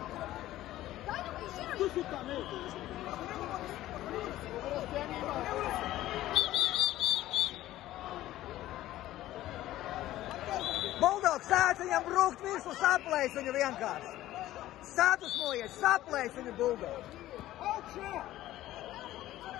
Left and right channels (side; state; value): right; quieter; 14.8 dB